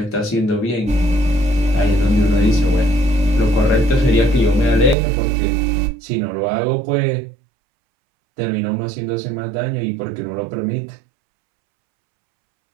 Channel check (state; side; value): drops out; left; at 5.0 s